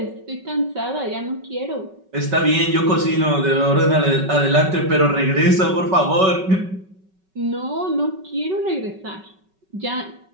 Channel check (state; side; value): late; left; 5.3 ms